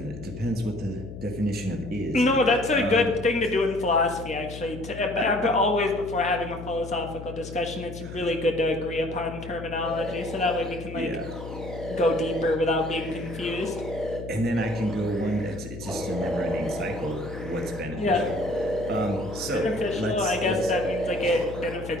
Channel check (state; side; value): noise; left; hum, 11 dB below the sound